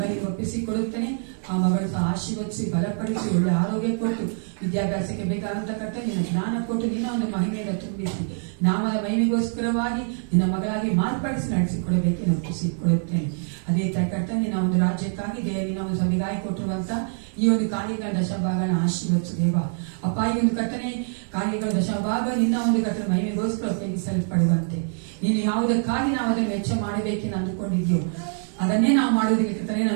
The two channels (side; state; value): left; silent; 60 dB below the other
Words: ಒಪ್ಪಿಸಿಕೊಡುತ್ತೇನೆ. ಆ ಮಗಳು ಸಹ ಆಶೀರ್ವದಿಸಿ ಬಲಪಡಿಸಿ ಒಳ್ಳೆ ಆರೋಗ್ಯ ಕೊಟ್ಟು ವಿದ್ಯಾಭ್ಯಾಸಕ್ಕೆ ಬೇಕಾದಂತ ಕರ್ತನೆ ನಿನ್ನ ಜ್ಞಾನ ಕೊಟ್ಟು ನಿನ್ನ ಒಂದು ಮಹಿಮೆಯಿಂದ ತುಂಬಿಸಿ ನಾಮದ ಮಹಿಮೆಗೋಸ್ಕರವಾಗಿ ನಿನ್ನ ಮಗಳಾಗಿ ಮಾರ್ಪಡಿಸಿ ನಡೆಸಿಕೊಡಬೇಕೆಂದು ಒಪ್ಪಿಸಿಕೊಡುತ್ತೇನೆ. ಅದೇ ತರ ಕರ್ತನೆ ನಿನ್ನ ಒಂದು ರಾಜ್ಯಕ್ಕಾಗಿ ನಿನ್ನ ಒಂದು ಸಭೆಗಾಗಿ ಕೊಟ್ಟಿರುವಂತ ಈ ಒಂದು ಕಾರ್ಯಗಳ ದಶಭಾಗನ ಆಶೀರ್ವದಿಸು ದೇವ. ಅಪ್ಪ, ಈ ಒಂದು ಕರ್ತನೆ ಕಾರ್ಯಗಳ ದಶಭಾಗ ನಿನ್ನ ಒಂದು ಕರ್ತನೆ ಮಹಿಮೆಗೋಸ್ಕರ ಉಪಯೋಗಿಸಲ್ಪಡುವಂತೆ ನೀನು ಯಾವುದಕ್ಕಾಗಿ ನಾವು ಅದನ್ನು ವೆಚ್ಚ ಮಾಡಬೇಕೆಂದು ಅಂದುಕೊಂಡಿದ್ಯೋ ಅದನ್ನೇ ನಾವು ಮಾಡೋದಕ್ಕೆ ಕರ್ತನೆ